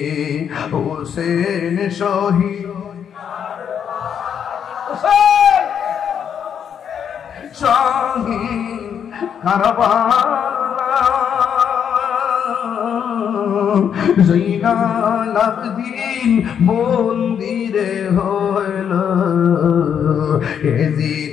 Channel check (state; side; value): quieter; right; 8.1 dB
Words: হোসেন শহীদ শহীদ কারবালা জৈনাল আবদিন মন্দিরে হইল